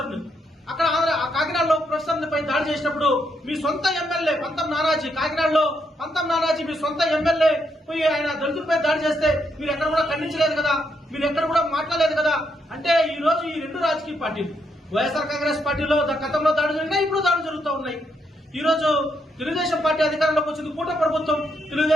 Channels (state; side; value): normal; both; correlation 0.78